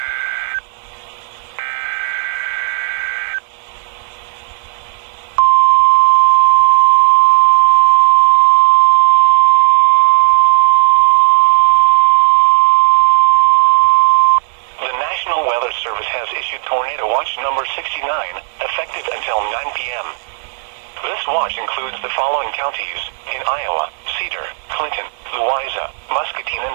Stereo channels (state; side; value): silent; left; digital silence